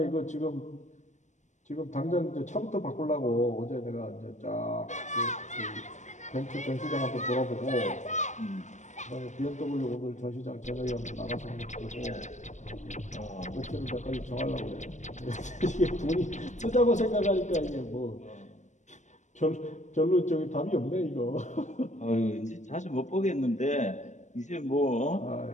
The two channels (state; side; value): late; right; 0.34 ms